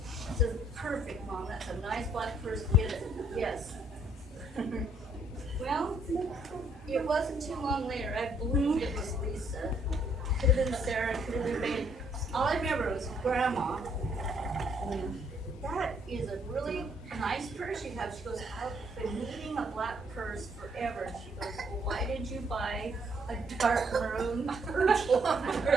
I said, perfect, Mom, that's a nice black purse, get it. Yes. Well, it wasn't too long later, I believed it was Lisa. Could have been Sarah, could have been Babe. All I remember was Grandma. That is a really nice purse you have. She goes, I've been needing a black purse forever. She goes, well, why did you buy a dark maroon purse?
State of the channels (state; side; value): normal; both; correlation 0.68